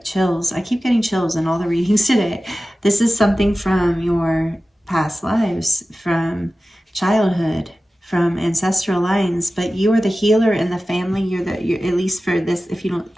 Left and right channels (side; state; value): both; normal; correlation 0.95